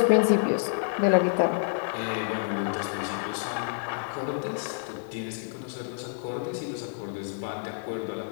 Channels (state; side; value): silent; right; digital silence